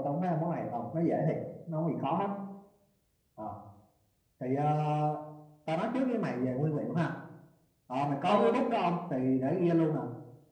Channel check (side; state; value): both; identical; correlation 1.00